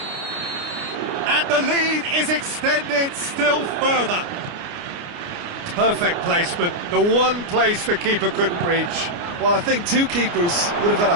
And the lead is extended still further. Perfect placement, the one place the keeper couldn't reach. Well, I think 2 keepers would have had a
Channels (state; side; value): late; left; 29 ms